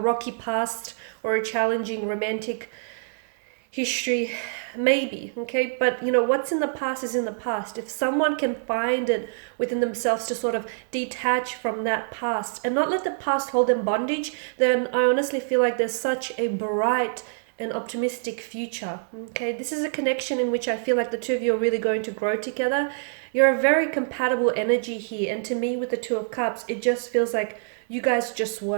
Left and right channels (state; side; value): silent; left; digital silence